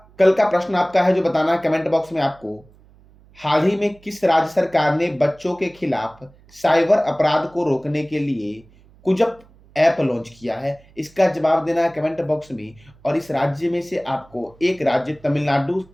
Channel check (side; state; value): right; noise; hum, 27 dB below the sound